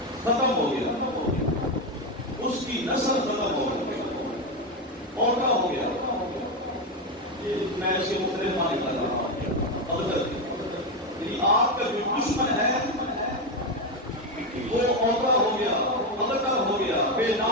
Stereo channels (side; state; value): both; normal; correlation 0.11